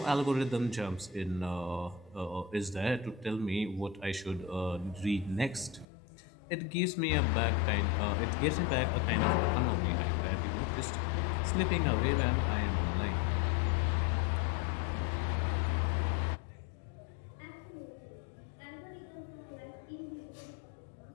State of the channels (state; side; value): drops out; right; at 5.9 s